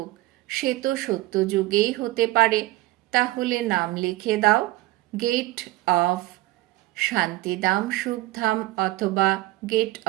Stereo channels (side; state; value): left; quieter; 18.4 dB